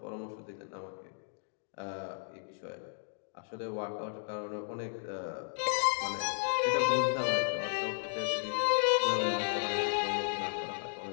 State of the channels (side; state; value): right; silent; digital silence